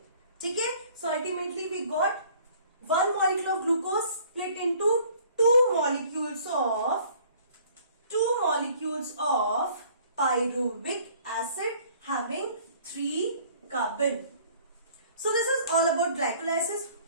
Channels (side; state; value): both; inverted; correlation -0.55